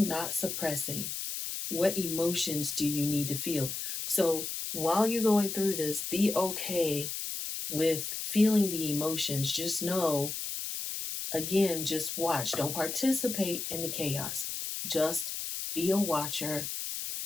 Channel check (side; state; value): left; noise; hiss, 4 dB below the sound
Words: not suppressing. What emotions do you need to feel? So, while you're going through this, be okay with feeling the emotions. Just know, again, just watch. Don't participate in the chaos. Just be a watcher.